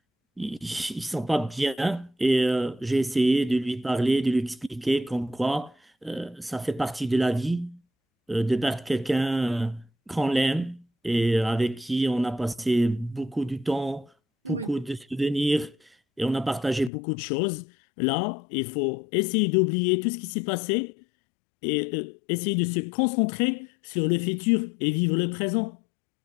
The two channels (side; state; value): right; drops out; at 16.9 s